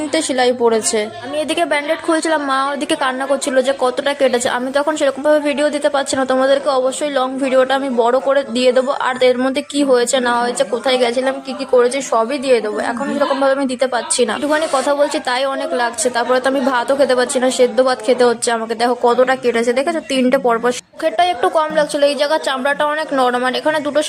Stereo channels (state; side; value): identical; both; correlation 1.00